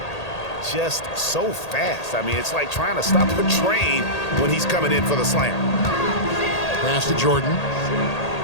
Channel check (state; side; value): late; right; 1.8 ms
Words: Just so fast. I mean, it's like trying to stop a train when he's coming in for the slam. Pass to Jordan.